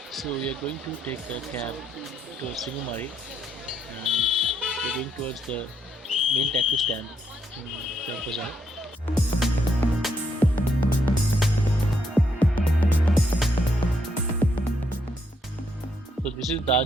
So we are going to take a cab to Singamari and we're going towards the main taxi stand in Chowk Bazaar. So this is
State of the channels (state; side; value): normal; both; correlation 0.76